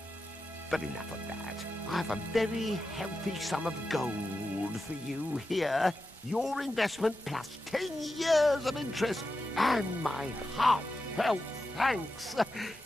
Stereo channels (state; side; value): normal; both; correlation 0.90